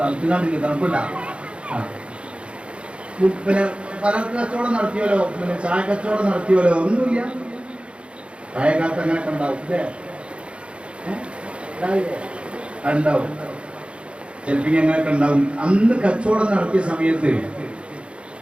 തണുപ്പില്ല. പിന്നെ പല കച്ചവടം നടത്തിയല്ലോ, പിന്നെ ചായ കച്ചവടം നടത്തിയല്ലോ, ഒന്നുമില്ല. ചായക്കാലത്ത് അങ്ങനെയൊക്കെ ഉണ്ടാവും അല്ലേ? ഉണ്ടാവും, ചിലപ്പോൾ അങ്ങനെയൊക്കെ ഉണ്ടാവും. അന്ന് കച്ചവടം നടത്തിയ സമയത്ത്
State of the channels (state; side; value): late; left; 0.058 ms